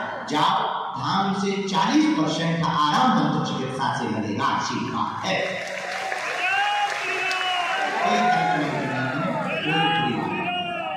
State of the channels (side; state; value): both; identical; correlation 1.00